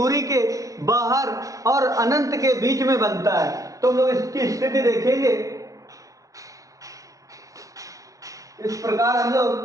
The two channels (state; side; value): late; left; 0.16 ms